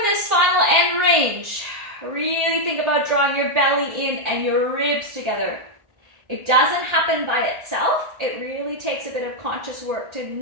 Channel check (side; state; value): left; late; 1.8 ms